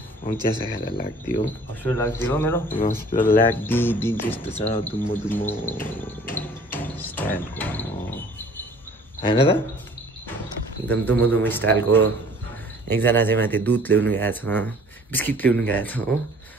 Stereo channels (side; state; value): both; normal; correlation 0.52